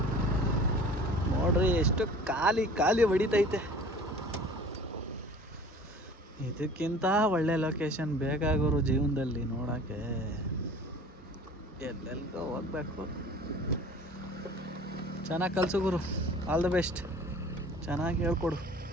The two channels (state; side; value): normal; both; correlation 0.45